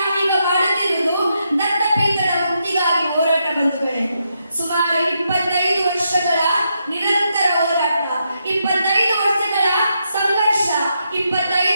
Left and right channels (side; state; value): both; inverted; correlation -0.81